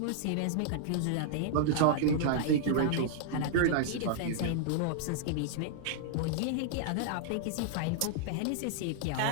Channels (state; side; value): different; both; correlation -0.01